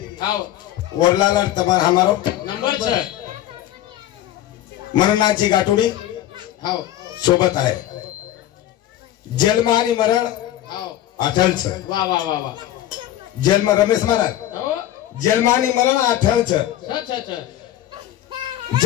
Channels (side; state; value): right; quieter; 13.0 dB